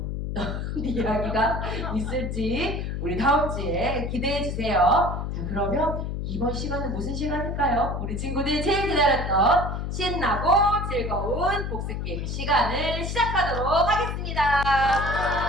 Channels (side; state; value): left; noise; hum, 3 dB below the sound